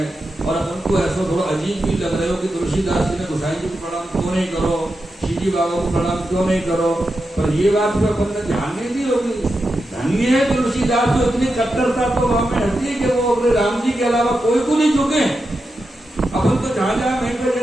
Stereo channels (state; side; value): normal; both; correlation 0.88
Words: और अपन को ऐसा थोड़ा अजीब भी लग रहे हो कि तुलसीदास जी ने गोसाई जी को प्रणाम क्यों नहीं करो, श्रीजी बाबा को प्रणाम क्यों नहीं करो। पर ये बात तो अपन ने ध्यान नहीं दी होगी। धन्य है तुलसीदास जो इतनी कट्टरता तो वहां में रहती है कि वो अपने राम जी के अलावा कोई को नहीं झुके। अपन तो जहां जहां वेंकट